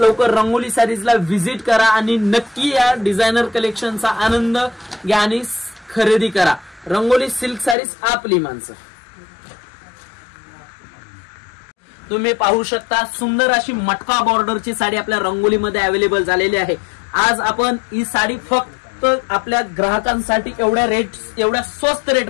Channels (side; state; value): right; drops out; at 7.8 s